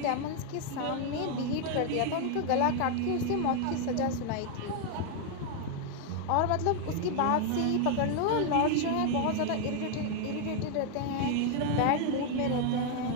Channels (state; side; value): different; both; correlation 0.00